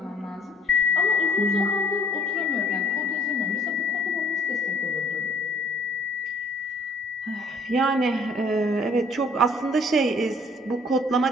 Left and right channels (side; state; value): both; normal; correlation 0.58